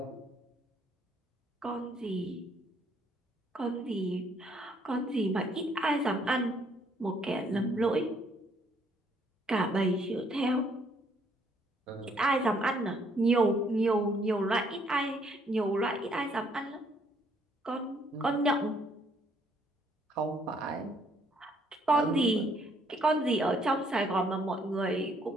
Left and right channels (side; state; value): both; normal; correlation 0.67